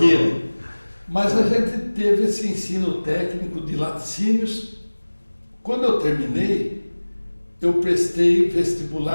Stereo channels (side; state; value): both; inverted; correlation -1.00